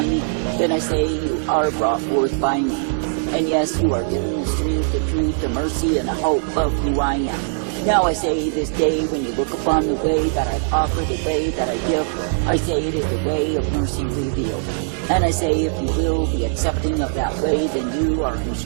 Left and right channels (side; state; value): left; silent; digital silence